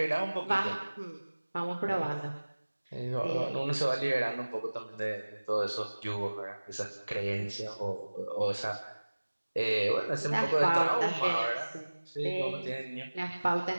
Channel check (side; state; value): both; inverted; correlation -1.00